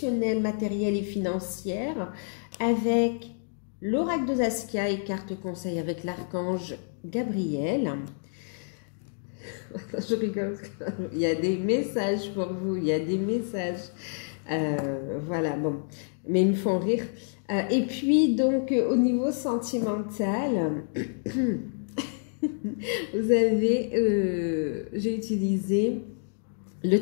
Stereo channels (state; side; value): silent; right; digital silence